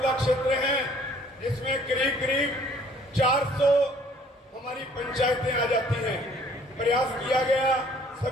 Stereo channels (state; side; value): normal; both; correlation 0.58